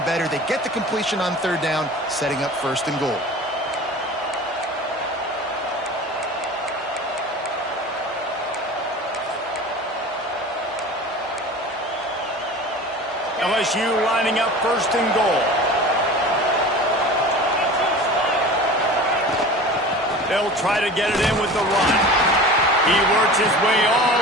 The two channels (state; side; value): normal; both; correlation 0.37